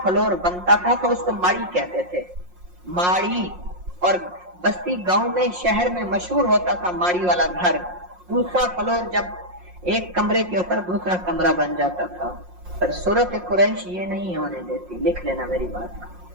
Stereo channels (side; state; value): left; late; 5.6 ms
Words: فلور بنتا تھا تو اس کو ماڑی کہتے تھے، ماڑی۔ اور بستی گاؤں میں شہر میں مشہور ہوتا تھا ماڑی والا گھر، دوسرا فلور جب ایک کمرے کے اوپر دوسرا کمرہ بن جاتا تھا۔ پر سورۃ قریش یہ نہیں ہونے دیتی، لکھ لینا میری